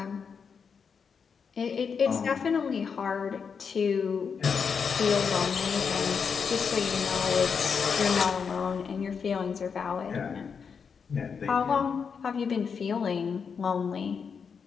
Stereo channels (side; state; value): right; quieter; 6.1 dB